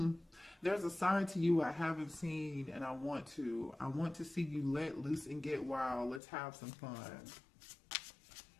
There's a side to you I haven't seen, and I want to. I want to see you let loose and get wild. Let's have some fun.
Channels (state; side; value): drops out; right; at 6.2 s